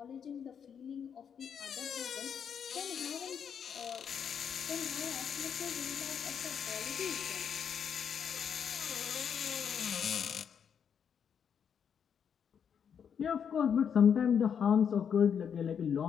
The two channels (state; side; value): quieter; right; 7.6 dB